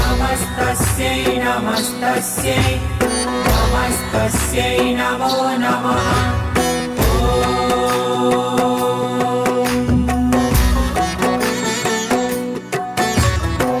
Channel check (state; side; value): identical; both; correlation 1.00